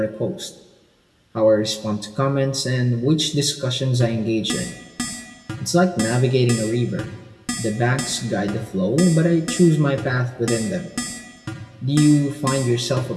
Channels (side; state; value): both; identical; correlation 1.00